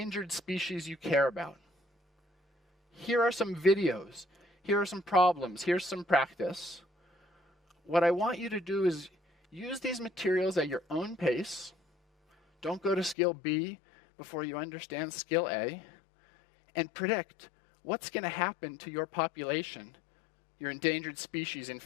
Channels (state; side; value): drops out; right; at 13.2 s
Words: species you care about. Here are some videos. Here are some problems. Here's some practice. What I want you to do is use these materials at your own pace. Don't go to skill B before you understand skill A. And predict what's going to happen to your population, your endangered species, in